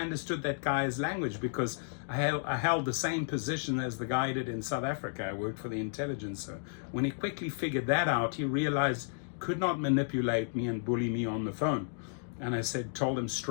understood that guy's language because I held the same position as the guy did in South Africa. I worked for the intelligence. So when he quickly figured that out, he realized could not manipulate me and bully me on the phone. And I told him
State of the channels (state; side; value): silent; right; digital silence